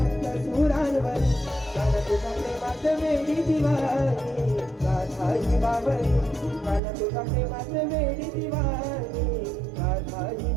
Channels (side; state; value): left; drops out; at 6.8 s